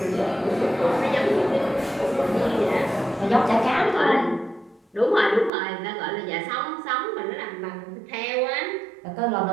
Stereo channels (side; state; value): left; drops out; at 5.5 s